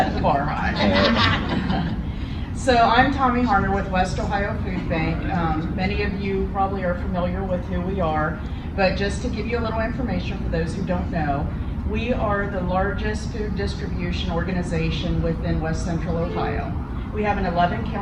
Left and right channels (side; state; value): both; identical; correlation 1.00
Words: the bar high. So I'm Tommy Harner with West Ohio Food Bank. Many of you probably are familiar with who we are, but just to give you a little information for those who don't know, we are the largest food distribution organization within West Central Ohio. We have an